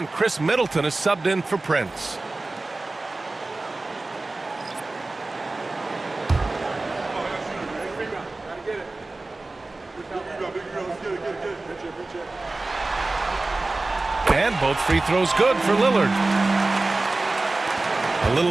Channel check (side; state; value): left; quieter; 3.2 dB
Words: Chris Middleton is subbed in for Prince. And both free throws good for Lillard. A